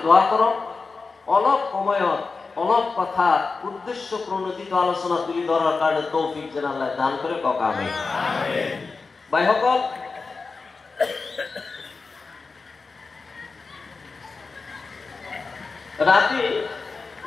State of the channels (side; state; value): right; quieter; 4.3 dB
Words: দোয়া করক। অলপ সময়ত অলপ কথা উদ্দেশ্য প্রণোদিত আলোচনা তুলি ধরার কারণে তৌফিক যেন আল্লাহ দান করে। কক আমিন। ভাইসকল, রাতে